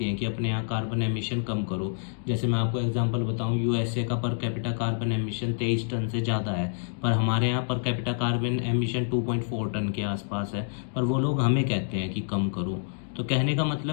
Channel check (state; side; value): silent; right; digital silence